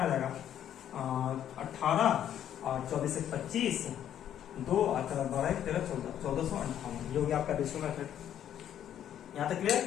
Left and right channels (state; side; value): quieter; right; 10.4 dB